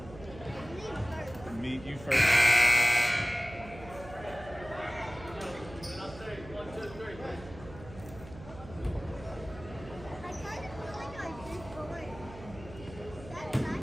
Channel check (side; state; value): right; noise; hum, 16 dB below the sound